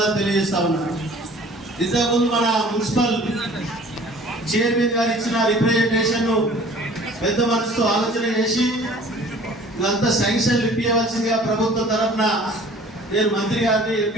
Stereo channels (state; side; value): normal; both; correlation 0.49